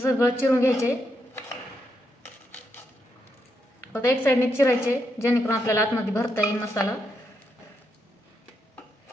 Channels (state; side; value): normal; both; correlation 0.81